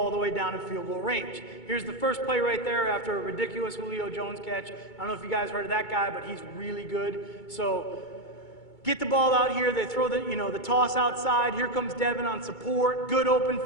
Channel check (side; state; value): right; late; 2.2 ms